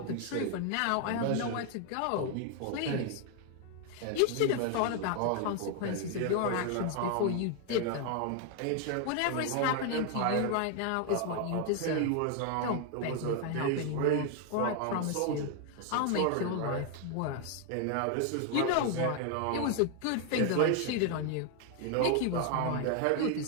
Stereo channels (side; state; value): both; different; correlation 0.00